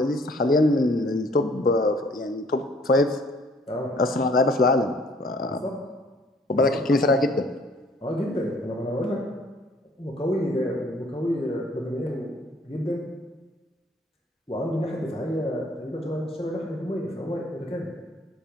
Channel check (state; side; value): normal; both; correlation 0.59